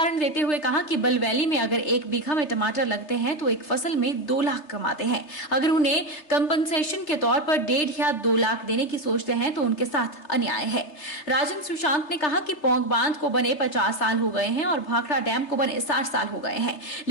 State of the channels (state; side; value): late; right; 3.3 ms